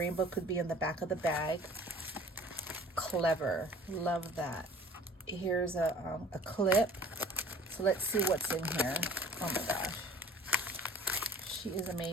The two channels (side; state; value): both; normal; correlation 0.49